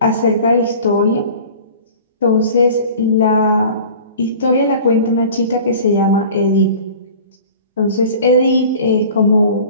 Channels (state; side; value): inverted; both; correlation -0.43